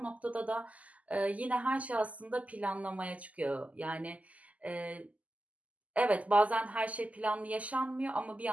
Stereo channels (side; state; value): left; late; 0.072 ms